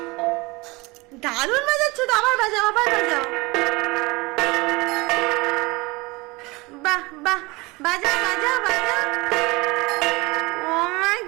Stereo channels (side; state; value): left; quieter; 24.0 dB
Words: দারুণ বাজাচ্ছ তো, আবার বাজাও আবার বাজাও। বাহ বাহ, বাজাও বাজাও বাজাও। ও মা